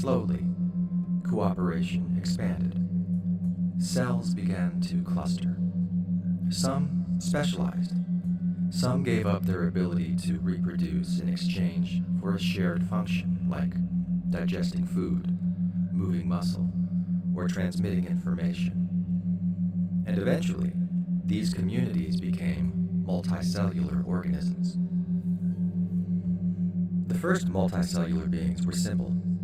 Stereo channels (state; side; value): identical; both; correlation 1.00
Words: cooperation expanded. Cells began to cluster. Some specialized. Some gave up their ability to reproduce in exchange for a shared function like digesting food, moving muscle, or transmitting information. And eventually, these communities became multicellular organisms. The first multicellular beings were simple: